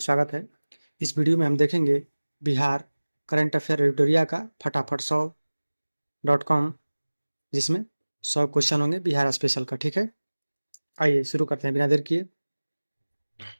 स्वागत है। इस वीडियो में हम देखेंगे बिहार करंट अफेयर एडिटोरिया का फटाफट 100.com, जिसमें 100 क्वेश्चन होंगे बिहार स्पेशल का। ठीक है, आइए शुरू करते हैं बिना देर किए।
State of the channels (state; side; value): inverted; both; correlation -1.00